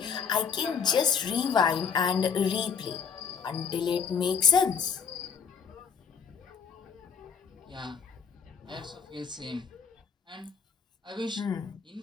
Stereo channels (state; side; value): quieter; right; 6.5 dB